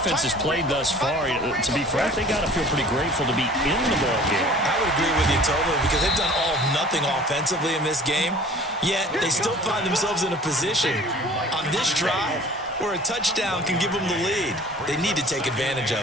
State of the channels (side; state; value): both; normal; correlation 0.48